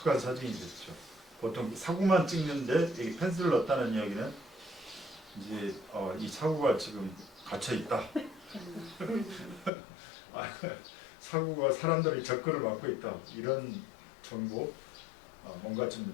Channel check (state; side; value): drops out; right; at 9.7 s